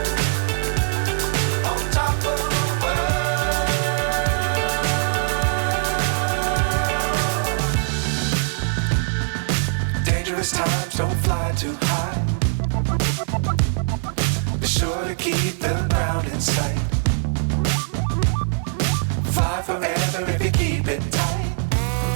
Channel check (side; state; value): left; silent; digital silence